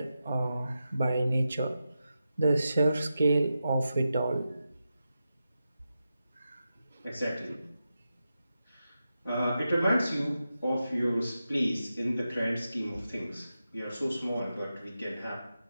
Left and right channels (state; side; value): inverted; both; correlation -0.90